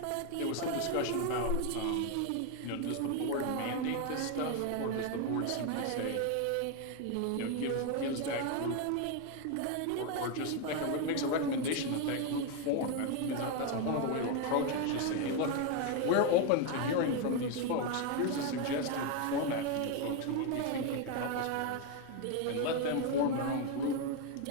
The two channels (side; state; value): both; different; correlation 0.02